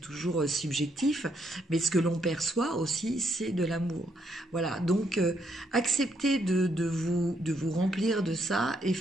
subjectif, mais ce que l'on perçoit aussi, c'est de l'amour. Voilà, donc acceptez de vous remplir de ça et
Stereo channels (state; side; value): normal; both; correlation 0.74